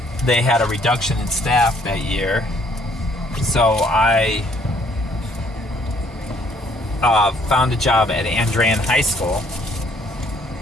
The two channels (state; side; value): normal; both; correlation 0.64